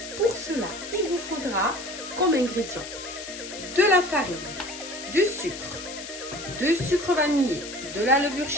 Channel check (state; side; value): noise; left; hiss, 11 dB below the sound